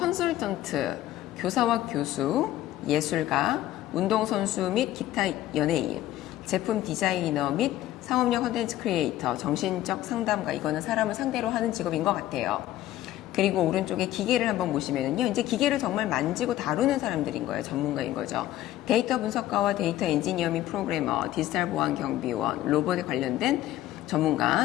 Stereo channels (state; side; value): quieter; right; 14.1 dB